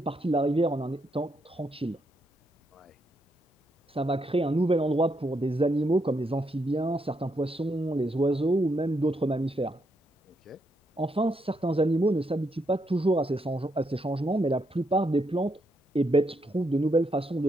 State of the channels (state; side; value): normal; both; correlation 0.78